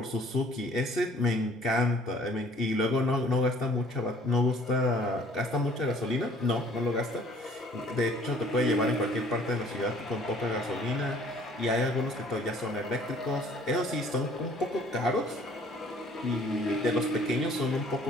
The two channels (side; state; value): both; normal; correlation 0.56